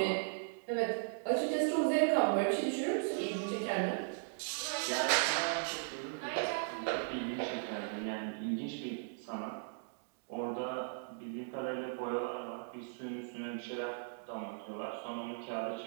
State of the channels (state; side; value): silent; left; digital silence